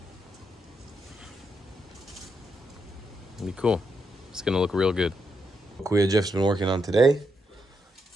It'll be cool. It's gonna look real good. Kuya Jeff's been working on today.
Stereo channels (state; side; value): normal; both; correlation 0.81